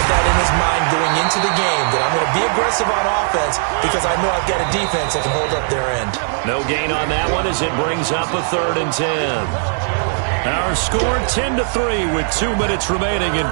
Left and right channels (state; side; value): silent; left; digital silence